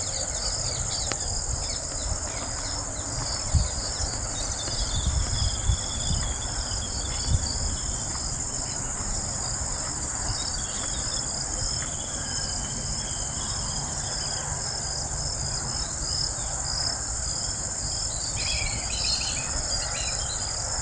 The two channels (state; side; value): identical; both; correlation 1.00